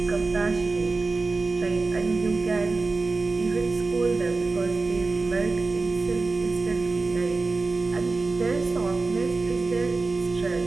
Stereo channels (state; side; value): quieter; left; 3.8 dB